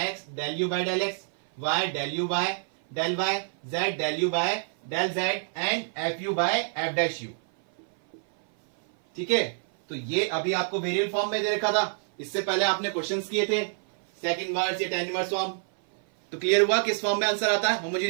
x del u by del x, y del u by del y, z del u by del z, and f u by f dash u. ठीक है, तो ये अभी आपको वेरिएबल फॉर्म में दे रखा था, इससे पहले आपने क्वेश्चंस किए थे सेकंड इनवर्स या टेन इनवर्स फॉर्म। तो क्लियर हुआ किस फॉर्म में आंसर आता है,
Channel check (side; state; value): left; silent; 56 dB below the other